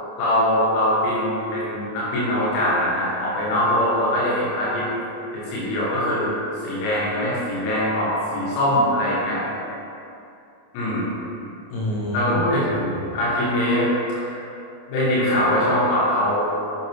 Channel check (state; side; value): late; right; 28 ms